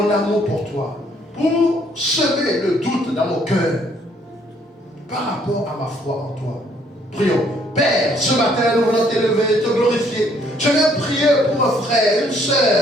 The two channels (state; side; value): normal; both; correlation 0.65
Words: amour pour toi, pour semer le doute dans mon cœur par rapport à ma foi en toi. Prions. Père, ce matin, nous voulons t'élever, te glorifier. Je viens prier pour un frère, une